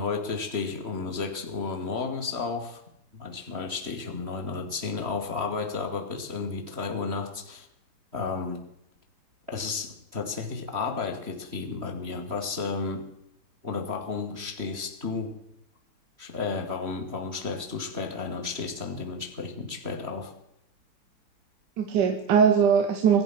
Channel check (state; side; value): late; left; 3.1 ms